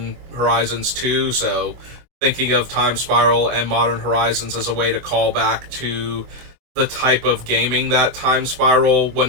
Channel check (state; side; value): late; left; 24 ms